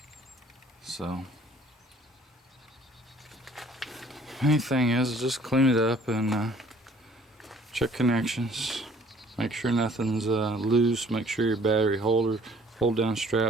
So main thing is just clean it up and check connections. Make sure nothing's loose. Make sure your battery hold down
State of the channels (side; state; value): both; normal; correlation 0.56